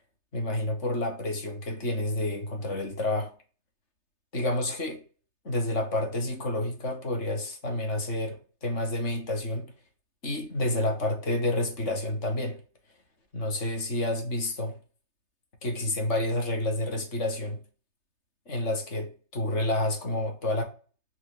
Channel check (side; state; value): right; late; 3.3 ms